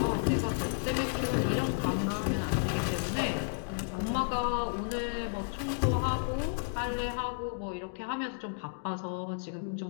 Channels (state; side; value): silent; right; digital silence